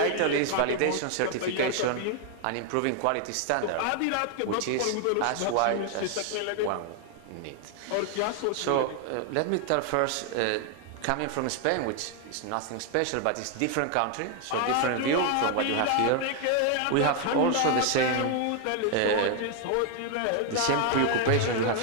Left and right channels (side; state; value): both; different; correlation 0.00